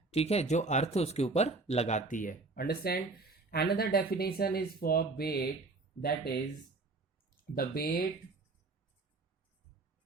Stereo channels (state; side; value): quieter; left; 3.5 dB